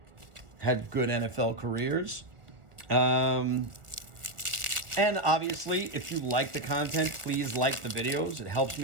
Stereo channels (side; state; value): left; late; 1.2 ms